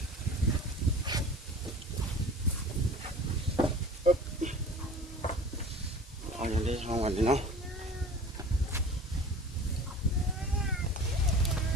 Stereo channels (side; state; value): both; normal; correlation 0.41